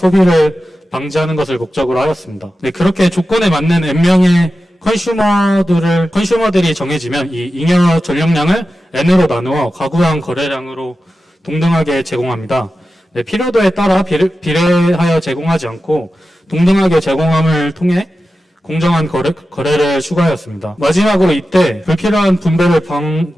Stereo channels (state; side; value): normal; both; correlation 0.93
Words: 방지하는 것을 목적으로 하였습니다. 네, 그렇게 조건에 맞는 N명의 컨슈머들이 정해지면 이 잉여 전력량을 N으로 나누어 가구당 거래량으로 동등하게 제공합니다. 네, 필요도에 따라 비례하여 제공하지 않고 동등하게 제공함을 통해 공정한 거래를 추가하였습니다. 마지막으로 이때 불필요한 분배를